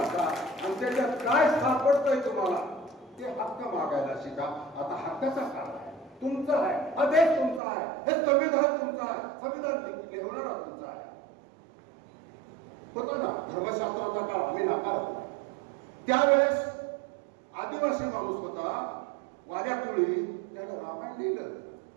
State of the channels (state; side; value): drops out; left; at 7.6 s